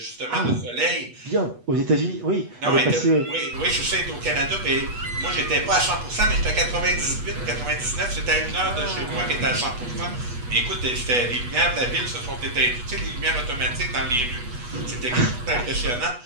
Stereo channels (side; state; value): left; late; 8.2 ms